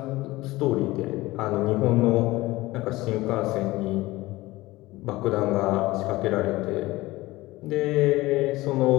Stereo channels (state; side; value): quieter; right; 19.2 dB